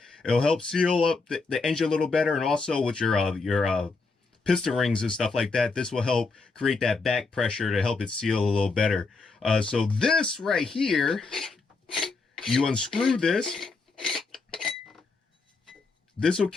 It'll help seal up the engine a little better. And also with your piston rings and stuff like that, this will help create that back pressure to help it seal a little better. So this right here, you unscrew this. This will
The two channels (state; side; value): quieter; right; 4.1 dB